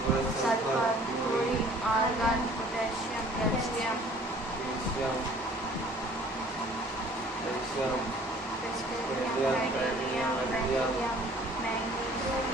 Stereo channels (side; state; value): both; normal; correlation 0.53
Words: sulphur, chlorine, argon, potassium, calcium, calcium,